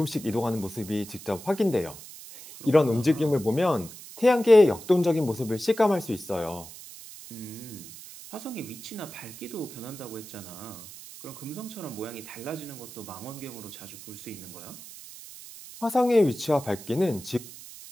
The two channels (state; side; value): noise; right; hiss, 15 dB below the sound